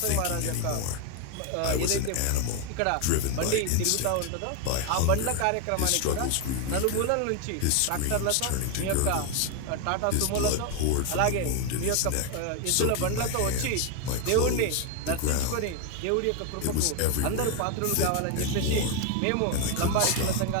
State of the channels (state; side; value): different; both; correlation 0.01